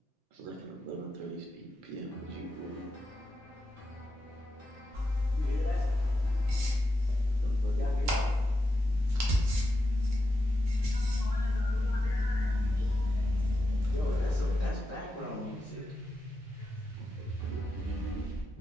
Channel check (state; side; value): normal; both; correlation 0.88